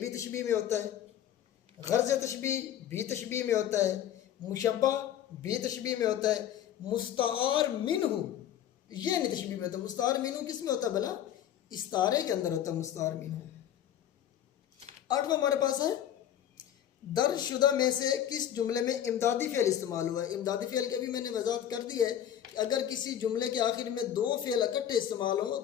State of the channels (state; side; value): quieter; right; 10.5 dB